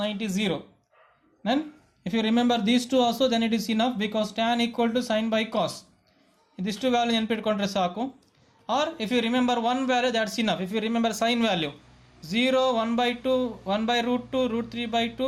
90 0. Then if you remember these two also, then it is enough, because tan equal to sin by cos. These two value ನೆನಪಿಟ್ಕೊಂಡ್ರೆ ಸಾಕು. Or if you remember one value, that's enough. If you remember sin value 0, 1/2, 1/√2, √3/2,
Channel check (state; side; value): identical; both; correlation 1.00